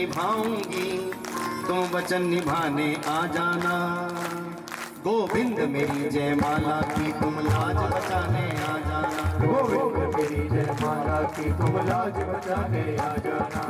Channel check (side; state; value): both; identical; correlation 1.00